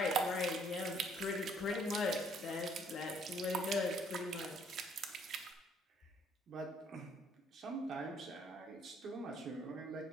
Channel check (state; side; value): normal; both; correlation 0.64